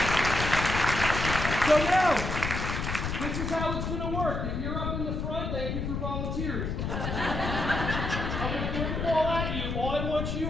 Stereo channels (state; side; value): noise; left; rumble, 3 dB below the sound